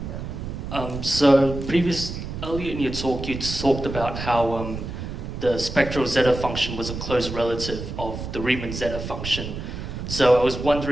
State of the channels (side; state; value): right; noise; rumble, 7 dB below the sound